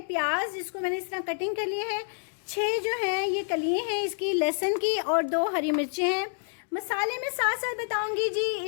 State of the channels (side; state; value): right; silent; digital silence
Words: प्याज, जिसको मैंने इस तरह कटिंग कर लिए है। 6 जो हैं ये कलियाँ हैं इसकी लहसुन की, और 2 हरी मिर्चें हैं। मसाले में साथ साथ बताऊंगी जी